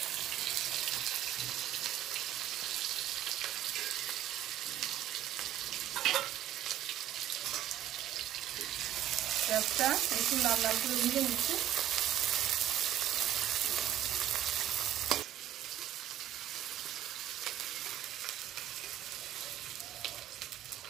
পেঁয়াজটা একটু লাল লাল করে ভেজে নিচ্ছি।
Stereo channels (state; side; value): quieter; left; 11.7 dB